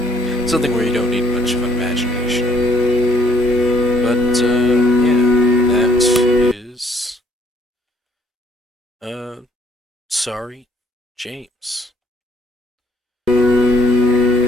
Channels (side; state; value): both; normal; correlation 0.64